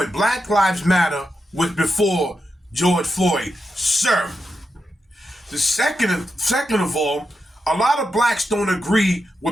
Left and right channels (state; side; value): normal; both; correlation 0.87